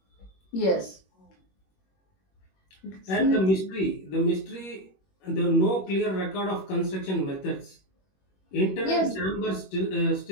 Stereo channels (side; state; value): right; late; 21 ms